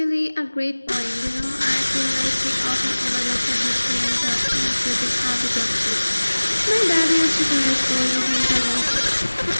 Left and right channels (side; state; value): both; inverted; correlation -1.00